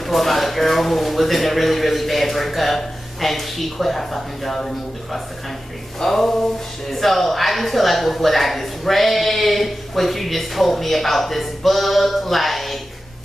about a girl who was in a really, really bad breakup, and she quit her fucking job and moved across the country. Oh, shit. So I just feel like with what I just read, what you just told me about this book, like,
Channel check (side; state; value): both; normal; correlation 0.93